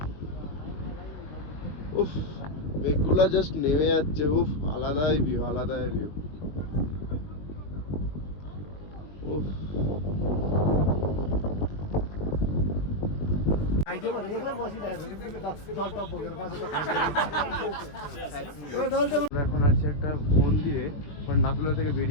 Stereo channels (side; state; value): right; late; 20 ms